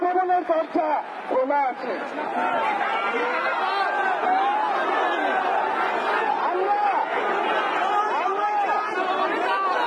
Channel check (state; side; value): identical; both; correlation 1.00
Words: দরজা খোলা আছে।